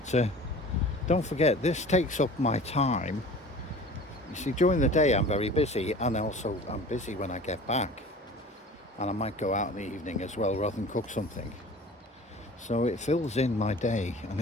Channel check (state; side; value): normal; both; correlation 0.42